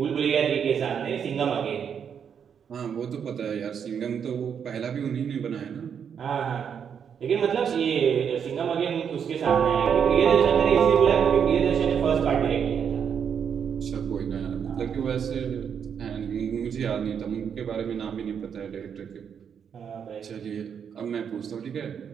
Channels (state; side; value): quieter; left; 7.6 dB